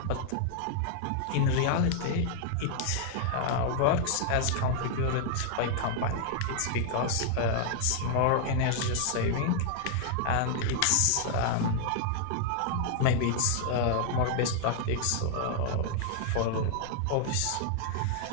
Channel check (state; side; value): different; both; correlation 0.00